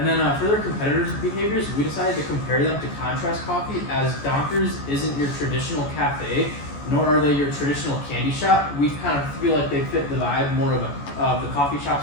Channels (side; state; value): right; late; 14 ms